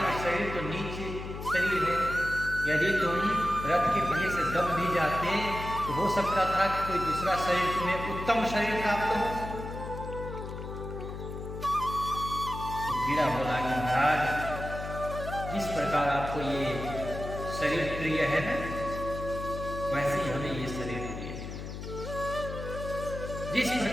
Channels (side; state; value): left; noise; hum, 8 dB below the sound